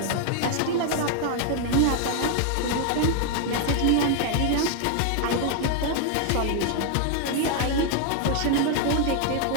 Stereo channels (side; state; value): both; different; correlation 0.00